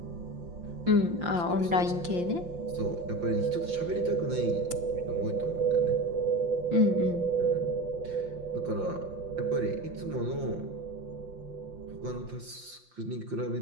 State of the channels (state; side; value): late; left; 5.7 ms